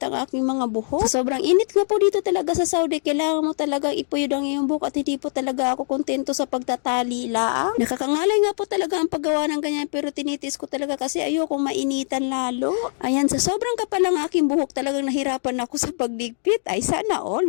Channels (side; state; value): right; silent; digital silence